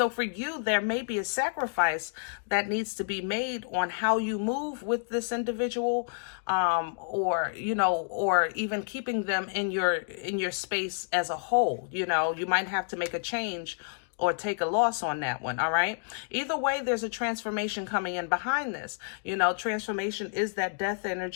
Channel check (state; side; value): silent; right; digital silence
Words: for you, there may be a sacrifice that needs to be made on how you move with this individual, or, you know, or even keeping them in your space as a whole. You know, you might have to make a change or take a loss on that one. All right. Either way, there's a transformation coming in behind this. You know, transformation is that death